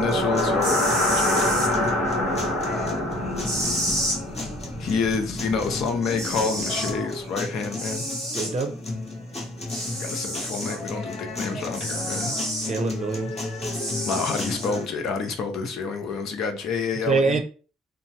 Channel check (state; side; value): normal; both; correlation 0.52